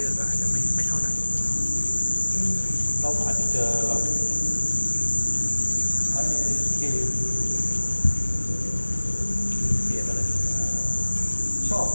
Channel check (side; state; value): both; inverted; correlation -1.00